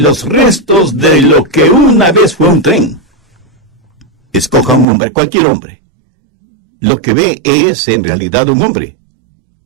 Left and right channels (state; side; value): drops out; left; at 4.9 s